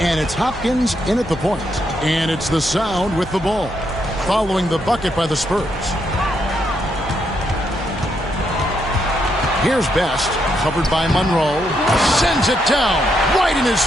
And it's Hopkins in at the point. And it's the Sound with the ball, following the bucket by the Spurs. Here's Best, covered by Monroe. Sends it down, right in his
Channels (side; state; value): both; normal; correlation 0.78